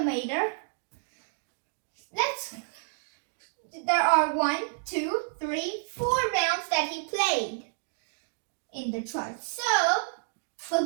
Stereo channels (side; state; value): left; silent; digital silence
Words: there are 1, 2, 3, 4 rounds that he played in the chart. So